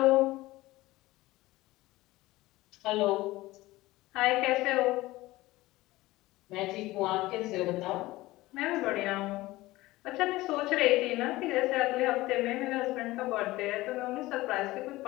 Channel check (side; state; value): right; quieter; 18.6 dB